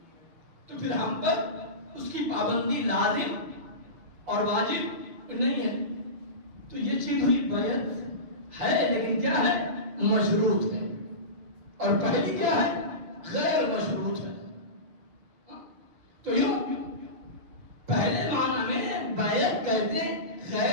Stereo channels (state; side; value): late; left; 6.6 ms